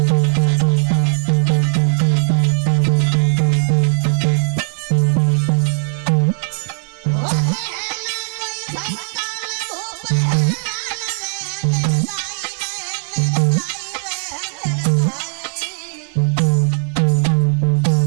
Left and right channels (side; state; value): left; silent; digital silence